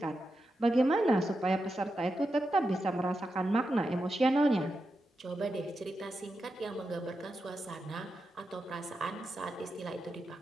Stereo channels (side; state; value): both; normal; correlation 0.88